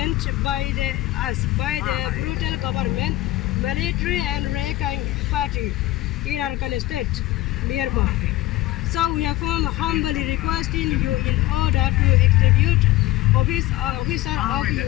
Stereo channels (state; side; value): quieter; right; 17.0 dB